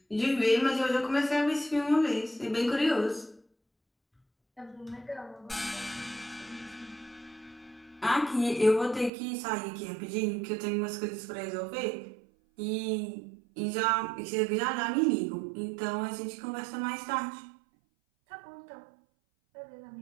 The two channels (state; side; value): drops out; left; at 9.1 s